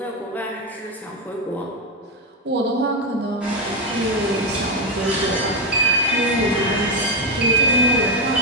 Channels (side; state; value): both; normal; correlation 0.08